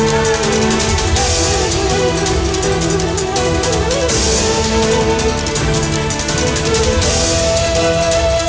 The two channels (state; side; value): identical; both; correlation 1.00